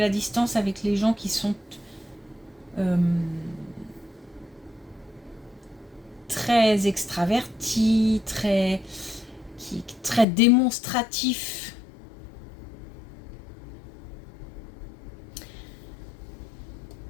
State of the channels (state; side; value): drops out; right; at 10.2 s